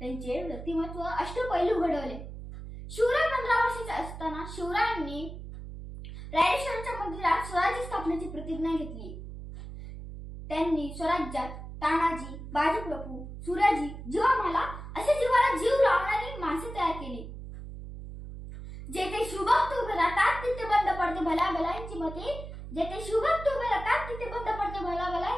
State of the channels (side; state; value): right; noise; hum, 11 dB below the sound